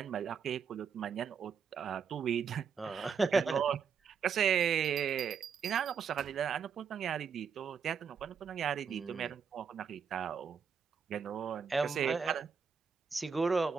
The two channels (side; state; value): left; quieter; 6.5 dB